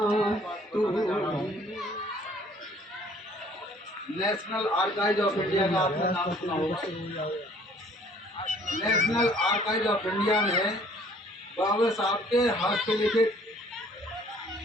नेशनल आर्काइव ऑफ इंडिया का आपने नाम सुना होगा। नेशनल आर्काइव ऑफ इंडिया में बाबा साहब के हाथ से लिखित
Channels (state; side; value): normal; both; correlation 0.57